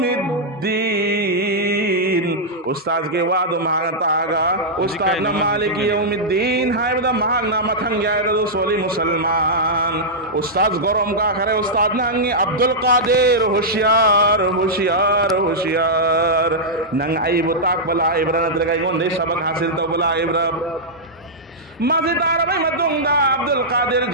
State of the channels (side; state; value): both; normal; correlation -0.09